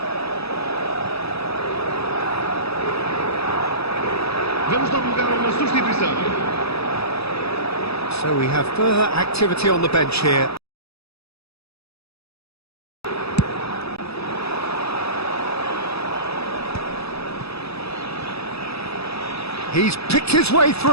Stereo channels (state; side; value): late; right; 0.78 ms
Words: Vamos dar lugar a uma substituição. So we have further activity on the bench here. He's picked his way